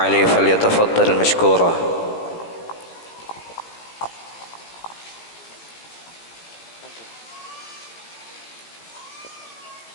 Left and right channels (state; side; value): late; right; 17 ms